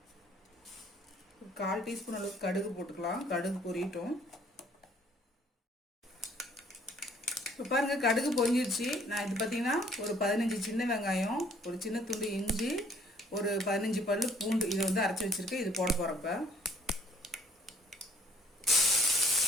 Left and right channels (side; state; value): both; normal; correlation 0.59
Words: ஒரு 1/4 டீஸ்பூன் அளவுக்கு கடுகு போட்டுக்கலாம். கடுகு பொரியட்டும். இப்போ பாருங்கள், கடுகு பொரிஞ்சிடுச்சு. நான் இது பார்த்தீங்கன்னா ஒரு 15 சின்ன வெங்காயம், ஒரு சின்ன துண்டு இஞ்சி, ஒரு 15 பல்லு பூண்டு இதை வந்து அரைச்சி வச்சுருக்கேன். இது போட போகிறப்ப